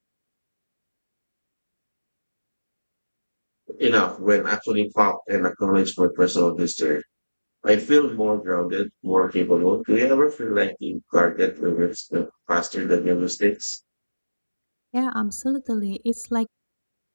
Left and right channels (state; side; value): inverted; both; correlation -1.00